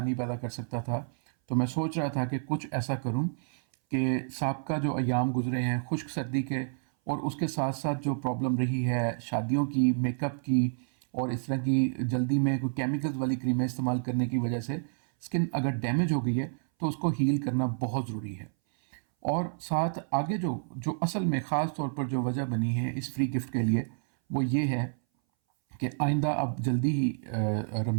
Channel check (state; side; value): silent; left; 58 dB below the other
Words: पैदा कर सकता था, तो मैं सोच रहा था कि कुछ ऐसा करूं कि साबका जो अयाम गुजरे हैं खुश्क सर्दी के और उसके साथ साथ जो प्रॉब्लम रही है शादियों की, मेकअप की और इस तरह की जल्दी में कोई केमिकल्स वाली क्रीमें इस्तेमाल करने की वजह से स्किन अगर डैमेज हो गई है तो उसको हील करना बहुत ज़रूरी है। और साथ आगे जो जो असल में ख़ास तौर पर जो वजह बनी है इस फ्री गिफ्ट के लिए, वो ये है कि आइंदा अब जल्दी ही